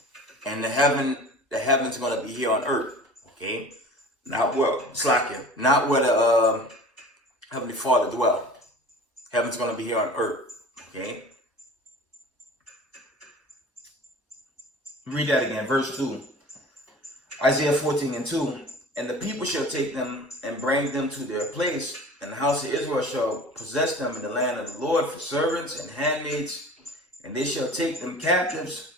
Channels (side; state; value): both; normal; correlation 0.41